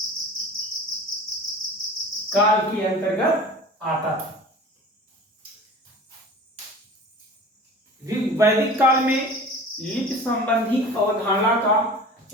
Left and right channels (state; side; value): normal; both; correlation 0.40